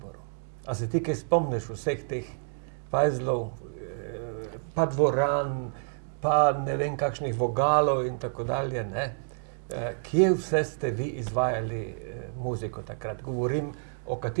A se ti kaj spomniš vseh teh fajzlov, pa dvoran, pa ne vem kakšnih vogalov in tako dalje, ne? Kje vse ste vi izvajali muziko takrat? Govorim o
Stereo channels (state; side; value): silent; left; digital silence